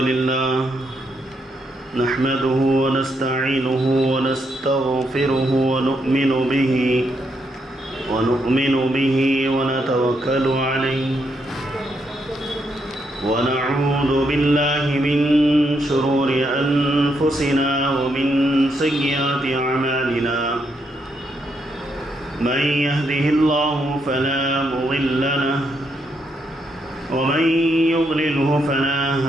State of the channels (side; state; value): both; normal; correlation 0.78